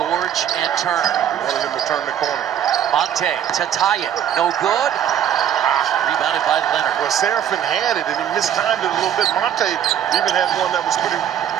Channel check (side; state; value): left; quieter; 9.8 dB